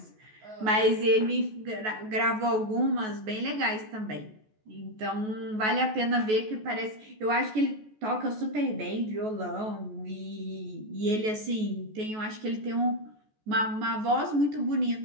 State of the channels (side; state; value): left; late; 14 ms